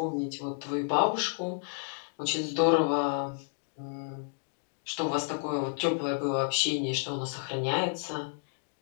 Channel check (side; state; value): right; silent; 57 dB below the other